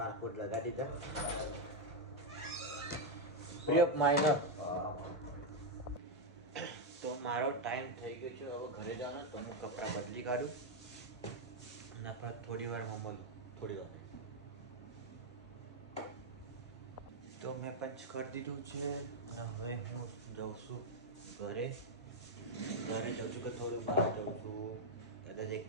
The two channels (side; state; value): both; normal; correlation 0.02